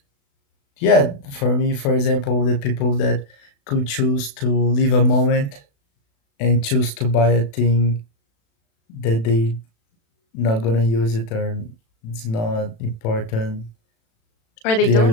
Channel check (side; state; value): right; late; 36 ms